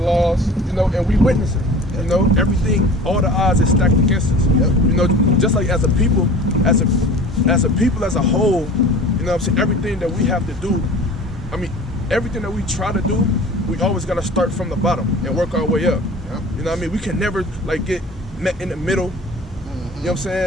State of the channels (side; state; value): both; normal; correlation 0.41